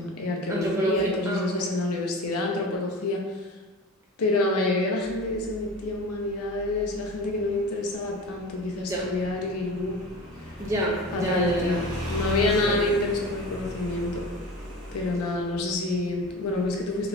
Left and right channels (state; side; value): normal; both; correlation 0.34